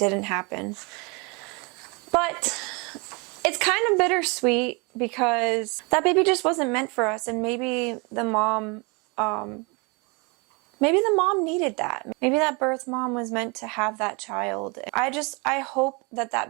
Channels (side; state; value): left; quieter; 29.9 dB